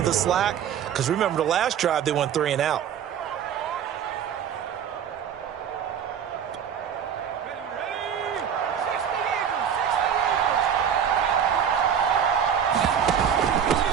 the slack. Because remember, the last drive, they went 3 and out.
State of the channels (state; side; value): quieter; left; 8.4 dB